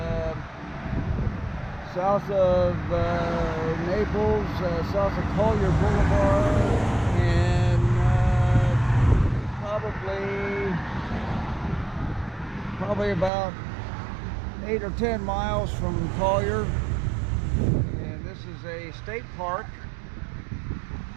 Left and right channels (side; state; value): left; drops out; at 13.3 s